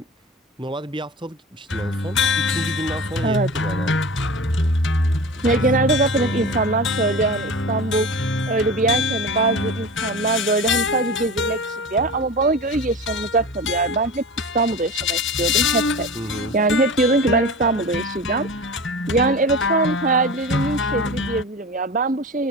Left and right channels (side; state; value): both; normal; correlation 0.32